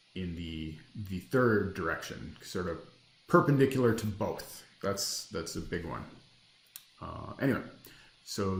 in the third direction, sort of perpendicular to both. That's a big one. Anyway, so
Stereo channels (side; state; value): both; identical; correlation 1.00